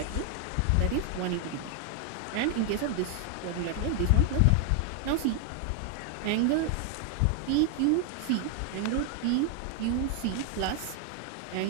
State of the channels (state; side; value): different; both; correlation 0.00